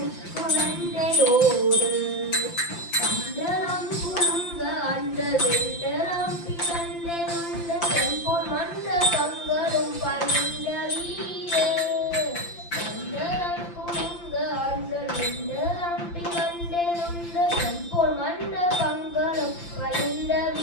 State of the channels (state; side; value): late; right; 5.8 ms